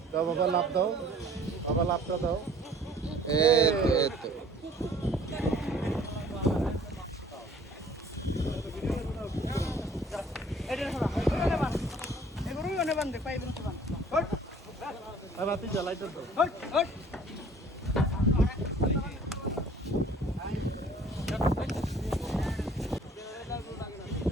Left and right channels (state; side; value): normal; both; correlation 0.53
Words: দাও বাবা, লাভ দাও বাবা, লাভটা দাও। এই তো এই তো। রাতে জ্বালাইতে দাও।